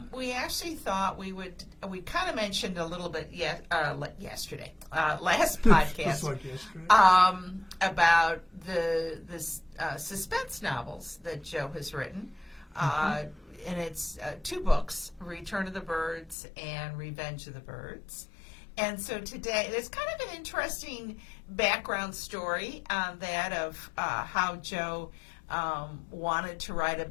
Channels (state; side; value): drops out; right; at 16.4 s